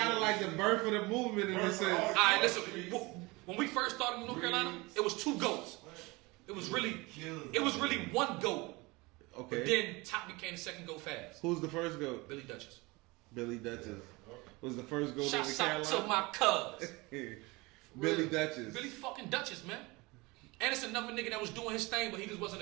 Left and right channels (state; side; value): quieter; left; 24.0 dB